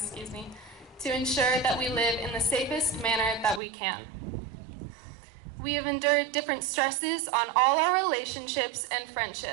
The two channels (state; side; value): drops out; left; at 3.6 s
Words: to ensure that we live in the safest manner that we can. We have endured different stresses on all our relationships and